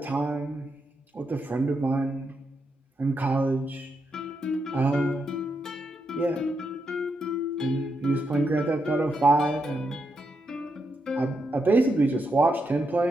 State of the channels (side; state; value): both; normal; correlation 0.83